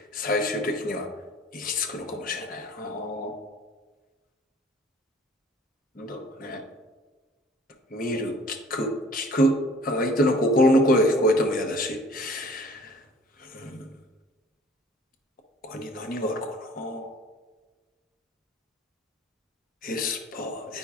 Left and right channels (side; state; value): both; normal; correlation 0.51